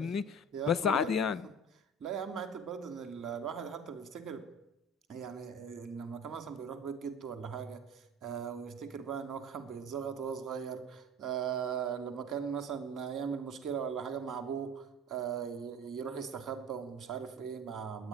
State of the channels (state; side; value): normal; both; correlation 0.38